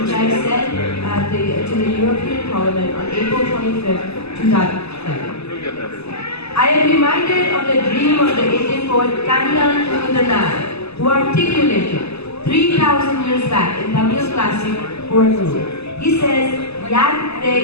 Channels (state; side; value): late; right; 0.79 ms